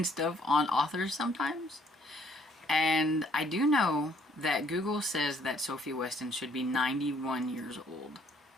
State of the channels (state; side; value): normal; both; correlation 0.64